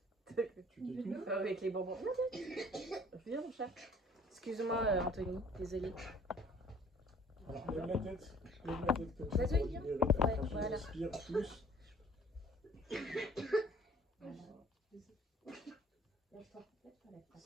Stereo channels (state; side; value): normal; both; correlation 0.53